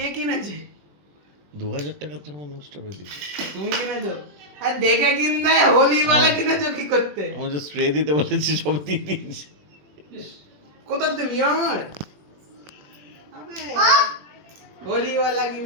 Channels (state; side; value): late; left; 20 ms